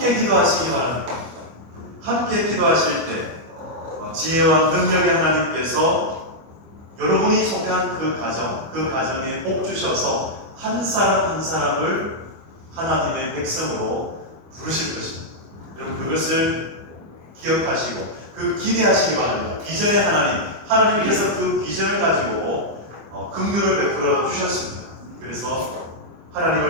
기도하시기 바랍니다. 함께 기도하실 때 지혜와 능력의 하나님께서 여러분이 속한 그 가정에 복 주셔서 한 사람 한 사람을 하나님의 백성으로 부르실 것입니다. 여러분 그것을 기억하시고 기대하시기 바랍니다. 비전의 하나님께서 그 비전을 가지고 긍휼을 베풀어 주셨습니다. 그래서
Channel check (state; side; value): late; left; 25 ms